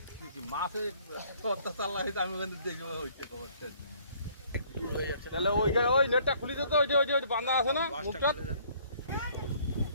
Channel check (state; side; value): inverted; both; correlation -0.59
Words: কি মাসে অত্যাচার লাগাইতে আমি ওখানে দেখবো হইছে খবরটা তাহলে ওই নেটটা খুলে দিত ওই বাঁধা আছে না মুখটা